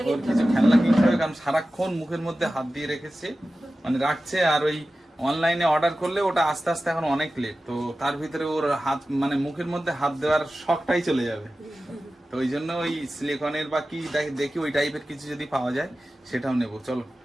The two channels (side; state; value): both; normal; correlation 0.95